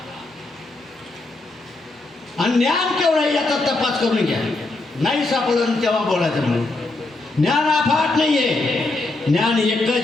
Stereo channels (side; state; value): right; quieter; 3.1 dB